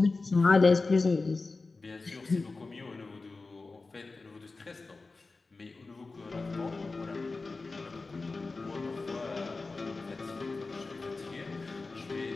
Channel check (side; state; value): right; quieter; 3.7 dB